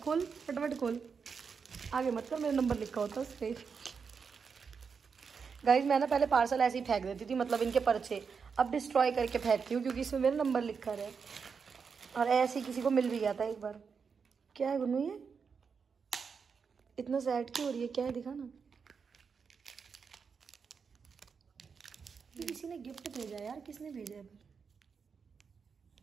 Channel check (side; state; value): left; quieter; 5.8 dB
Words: फटाफट खोल, आगे मत कर, मेरा नंबर लिखा होता उस पे। गाइस मैं ना पहले पार्सल ऐसे ही फेंक देती थी, मतलब इनके पर्चे, अब डिस्ट्रॉय करके फेंकती हूँ क्योंकि इसमें मेरा नंबर लिखा है। और ऐसे ही किसी को मिल भी गया था एक बार। क्या है गुन्नू ये इतना सैड क्यों हो रही है? क्या है दिखा ना। किसी ने गिफ्ट भेजा है यार, किसने भेजा है?